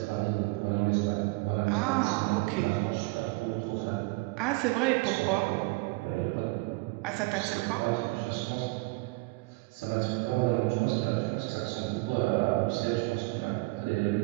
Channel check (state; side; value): quieter; left; 25.0 dB